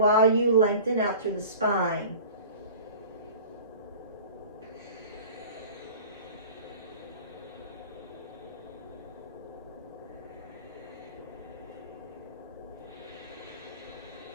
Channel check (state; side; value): inverted; both; correlation -0.41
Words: you lengthen out through the spine.